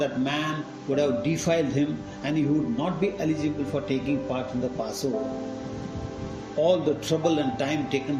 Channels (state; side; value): identical; both; correlation 1.00